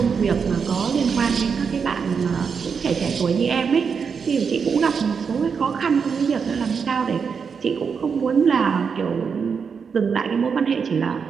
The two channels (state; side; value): quieter; left; 6.1 dB